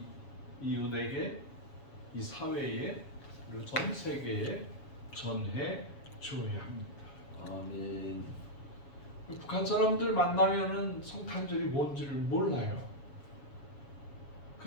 이웃에게, 이 사회에, 그리고 전 세계에 전해 주어야 합니다. 아멘. 북한 사람들 만나면은 성탄절이 뭔지를 몰라요.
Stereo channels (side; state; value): right; late; 7.2 ms